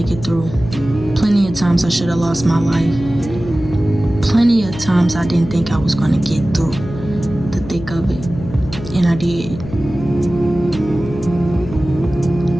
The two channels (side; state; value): left; noise; hum, 11 dB below the sound